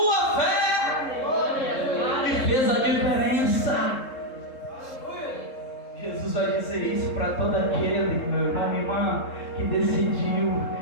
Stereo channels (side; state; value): right; late; 3.7 ms